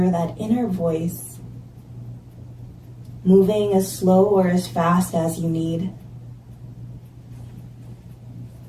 that inner voice, moving as slow or as fast as you need.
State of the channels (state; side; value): identical; both; correlation 1.00